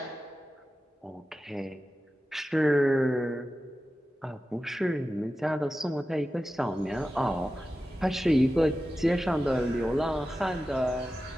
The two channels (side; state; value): both; normal; correlation 0.93